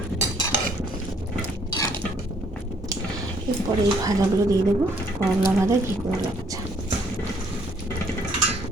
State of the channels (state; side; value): normal; both; correlation 0.65